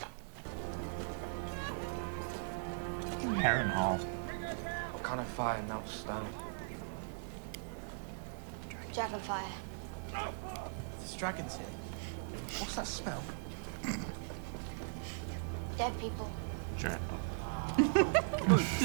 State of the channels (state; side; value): silent; left; 52 dB below the other